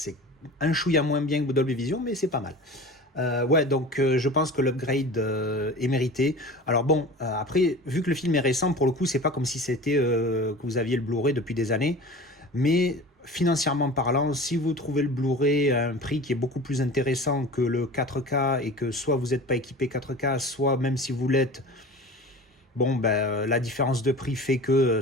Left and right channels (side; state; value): both; normal; correlation 0.37